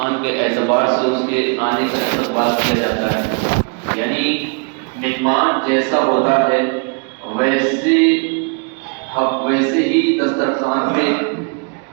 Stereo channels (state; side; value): quieter; left; 36.5 dB